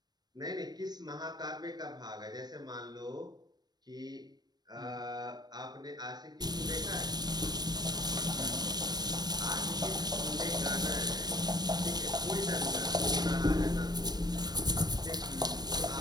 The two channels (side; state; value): left; late; 0.19 ms